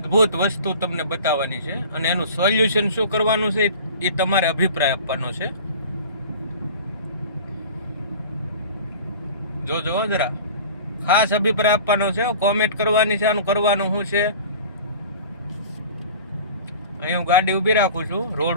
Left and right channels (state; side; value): inverted; both; correlation -0.41